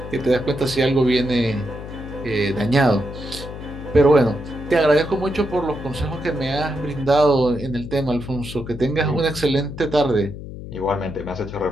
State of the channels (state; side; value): noise; left; hum, 11 dB below the sound